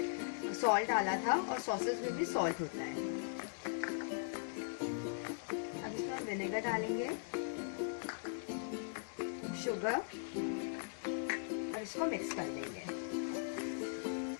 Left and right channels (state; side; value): silent; right; digital silence